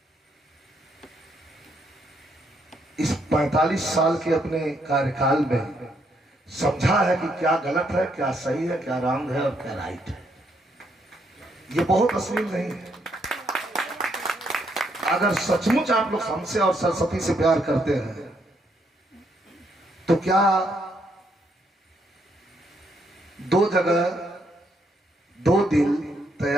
इस 45 साल के अपने कार्यकाल में समझा है कि क्या गलत है, क्या सही है, क्या रॉन्ग है और क्या राइट है। ये बहुत अश्लील नहीं है। अगर सचमुच आप लोग हमसे और सरस्वती से प्यार करते हैं तो क्या दो जगह दो दिल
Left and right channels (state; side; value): normal; both; correlation 0.74